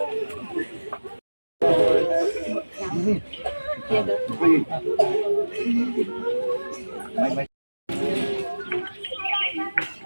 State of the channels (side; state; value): both; inverted; correlation -1.00